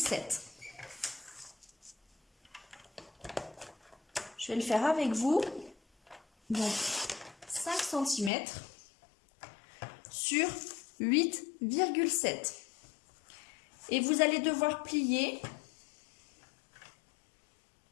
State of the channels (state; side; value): drops out; right; at 8.3 s